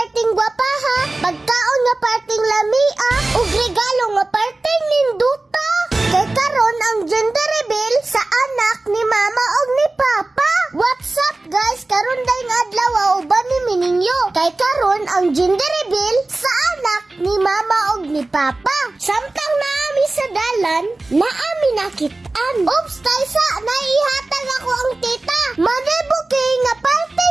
gwapa ha, pagkaon nga parting lamia, ug regalo nga parting ninduta. Kay karon ang gender reveal sa anak ni mama ug ni papa. What's up guys? Karon dayong adlaw uban ni Mininyo. Kay karon ang gender reveal sa anak ni mama ug ni papa. Samtang naami sa dalan, naami nakitaan. Oops, taysa, naihatag ako ang tita. Manebuki nga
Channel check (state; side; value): quieter; left; 3.0 dB